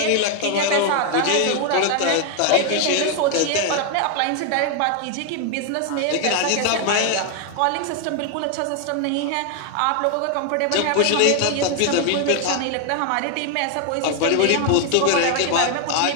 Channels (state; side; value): different; both; correlation 0.00